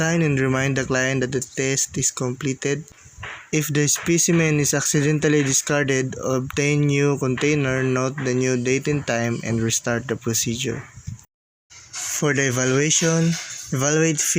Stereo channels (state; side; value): identical; both; correlation 1.00